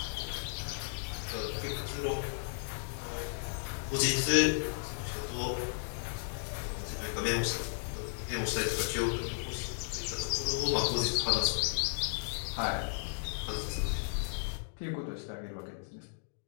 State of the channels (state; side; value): silent; right; digital silence